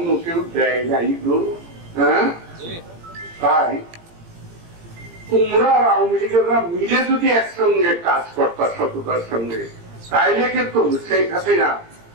কেউ দেয় না। হ্যাঁ, তাই তোমরা আওয়ামী লীগেরা মিলে যদি একসঙ্গে কাজ করতা সততার সঙ্গে, তাইলে কিন্তু শেখ হাসিনা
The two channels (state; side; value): late; left; 17 ms